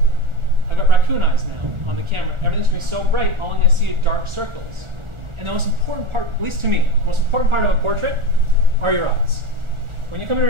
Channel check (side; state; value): left; late; 1.4 ms